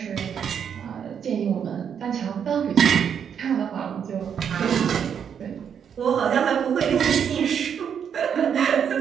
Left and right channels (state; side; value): quieter; left; 7.9 dB